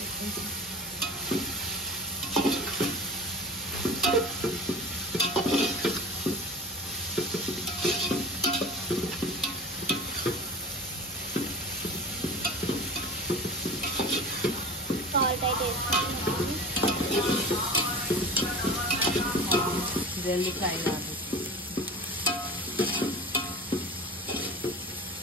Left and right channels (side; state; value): both; normal; correlation 0.36